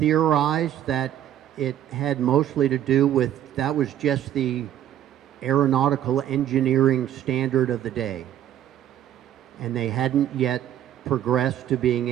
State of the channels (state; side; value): quieter; left; 11.3 dB